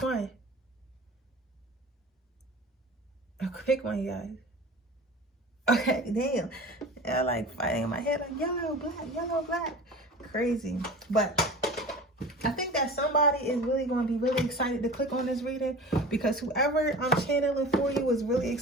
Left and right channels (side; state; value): both; normal; correlation 0.36